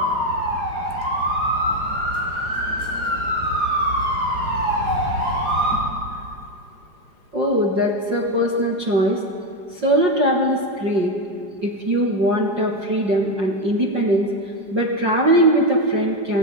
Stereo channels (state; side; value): late; left; 4.9 ms